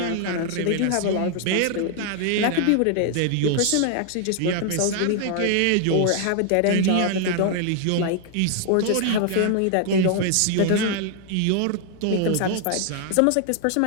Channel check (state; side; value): different; both; correlation 0.00